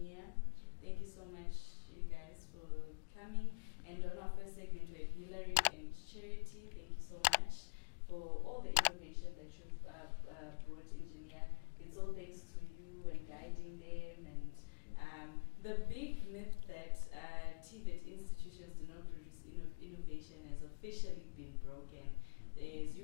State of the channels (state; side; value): silent; right; digital silence